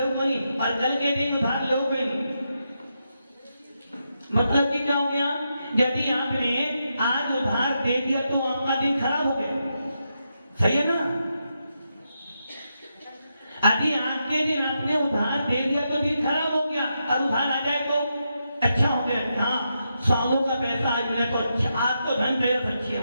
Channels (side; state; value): both; inverted; correlation -0.84